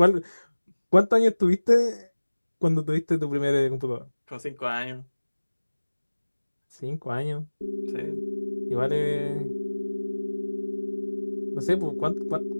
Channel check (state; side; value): inverted; both; correlation -1.00